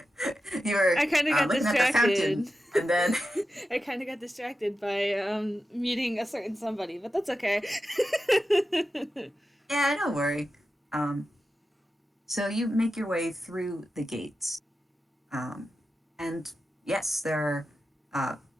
were I kind of got looking at the fountain, distracted. and then I kind of got distracted by meeting a certain somebody, but that's okay. yeah, don't worry. Um, so you make your way through the gates, um, and yes, uh,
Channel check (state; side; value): normal; both; correlation 0.91